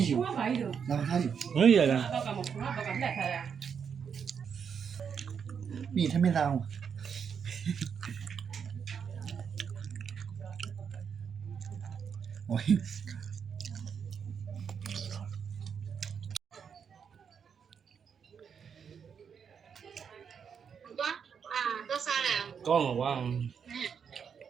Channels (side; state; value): left; quieter; 7.0 dB